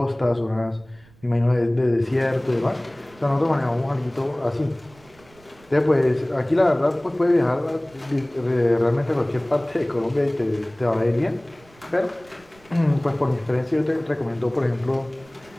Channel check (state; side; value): noise; right; rumble, 27 dB below the sound